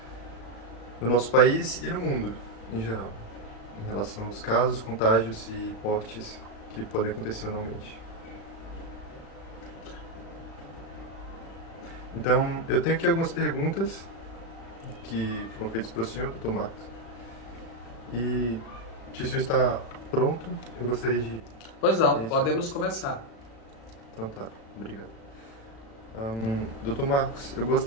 no nosso país e no mundo em geral, em relação aos casos, contágios e mortes que podem acontecer anualmente. Então, eu tenho aqui algumas perguntas que foram feitas para o senhor, Dr. Marcos. E se o senhor está pronto, eu gostaria de... Pois não, podemos começar. Então tá, obrigado. Dr. Marcos, eu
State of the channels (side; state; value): right; late; 36 ms